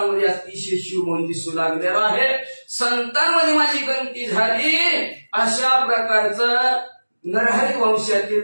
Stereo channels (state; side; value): inverted; both; correlation -1.00